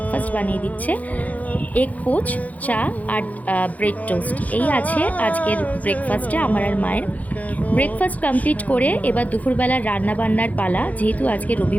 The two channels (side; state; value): right; late; 0.075 ms